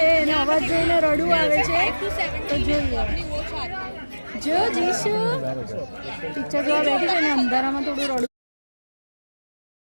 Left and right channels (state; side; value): inverted; both; correlation -1.00